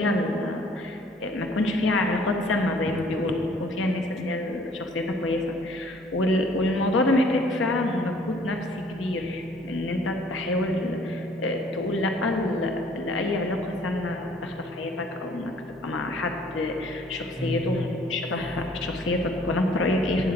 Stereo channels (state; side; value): normal; both; correlation 0.57